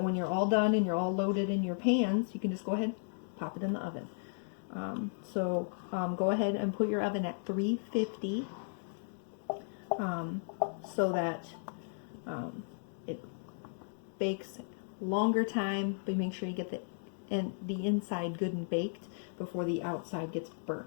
when you're all done and you're all loaded in your pans, you can just go ahead and pop it in the oven. Go ahead and put your oven at 350 so that it bakes longer time, but make sure you get the inside good and baked before the outside gets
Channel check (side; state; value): right; silent; digital silence